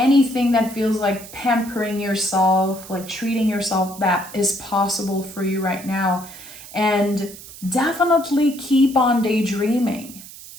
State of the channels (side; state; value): right; noise; hiss, 16 dB below the sound